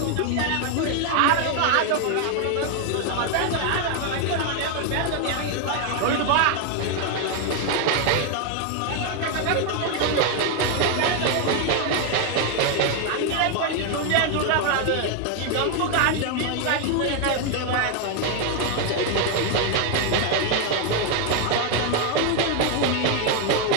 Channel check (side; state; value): both; different; correlation 0.01